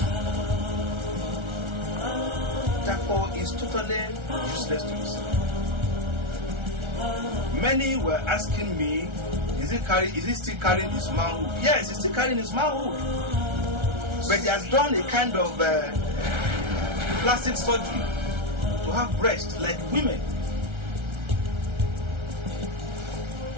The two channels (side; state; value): left; late; 1.3 ms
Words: Dapo is totally useless to us. Many were asking me, is he still carrying his manhood? Yes, he's still carrying his manhood. But he has done a kind of plastic surgery to have breasts like women.